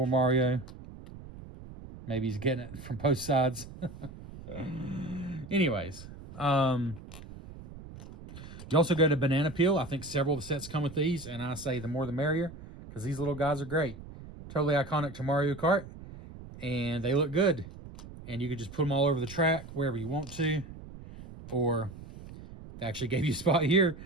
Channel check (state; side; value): noise; right; rumble, 15 dB below the sound